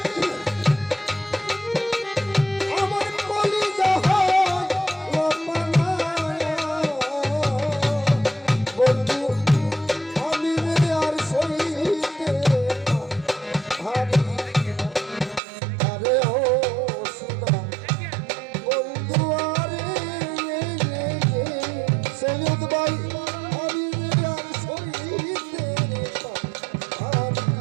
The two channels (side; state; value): left; drops out; at 15.4 s